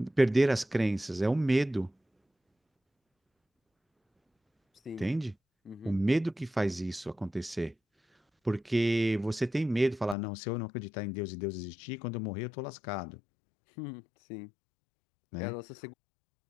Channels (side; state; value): right; drops out; at 10.2 s